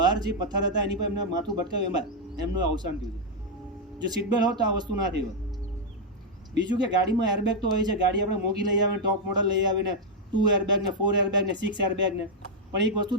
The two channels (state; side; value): normal; both; correlation -0.02